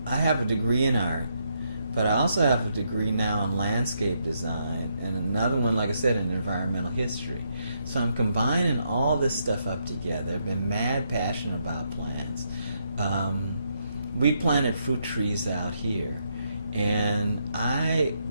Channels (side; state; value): both; inverted; correlation -0.78